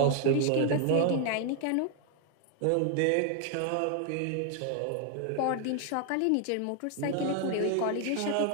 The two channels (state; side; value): different; both; correlation 0.00